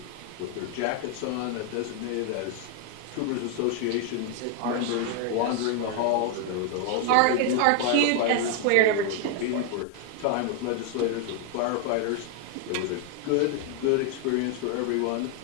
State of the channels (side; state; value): both; different; correlation 0.00